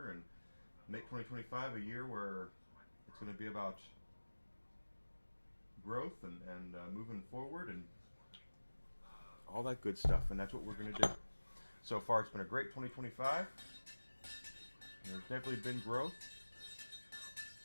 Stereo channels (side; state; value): both; inverted; correlation -1.00